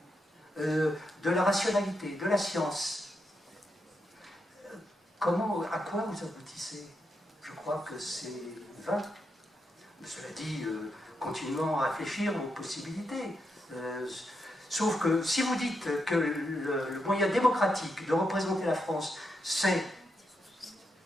de la rationalité, de la science, à quoi vous aboutissez? Je crois que c'est vain. Cela dit, continuons à réfléchir aux possibilités. Sauf que si vous dites que le moyen démocratique de représenter la France, c'est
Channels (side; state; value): both; normal; correlation 0.83